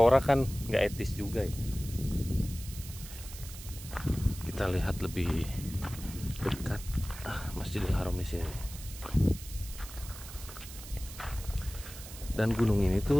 kan nggak etis juga ya. Kita lihat lebih dekat Masjidil Haram di sini. Dan gunung ini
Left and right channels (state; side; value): noise; right; hiss, 14 dB below the sound